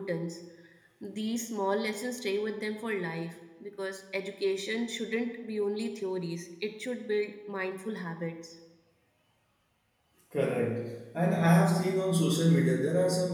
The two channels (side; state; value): both; identical; correlation 1.00